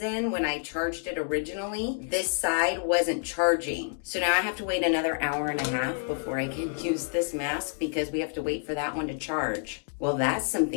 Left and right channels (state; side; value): silent; right; 59 dB below the other